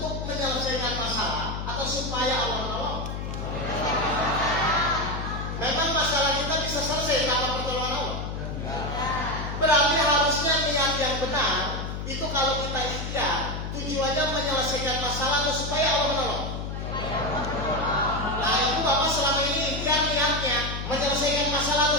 menyelesaikan masalah atau supaya Allah menolong. Memang masalah kita bisa selesai tanpa pertolongan Allah. Berarti harusnya niat yang benar itu kalau kita ikhtiar tujuannya menyelesaikan masalah atau supaya Allah menolong. Nah itu Bapak selama ini ikhtiar niatnya menyelesaikan masalah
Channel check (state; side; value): noise; left; hum, 5 dB below the sound